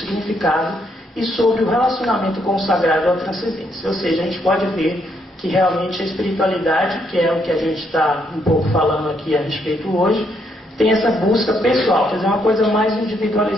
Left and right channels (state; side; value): normal; both; correlation 0.74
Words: e sobre o relacionamento com o sagrado ou a transcendência. Ou seja, a gente pode ver que realmente a espiritualidade, que é o que a gente está um pouco falando aqui a respeito hoje, tem essa busca pessoal, quer dizer, uma coisa mais